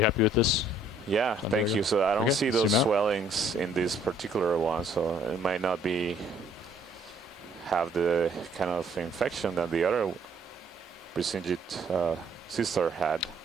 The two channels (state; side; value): normal; both; correlation 0.62